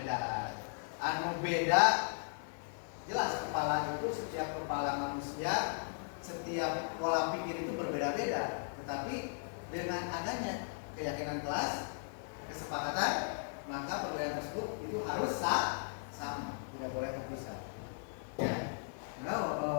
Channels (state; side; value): silent; right; digital silence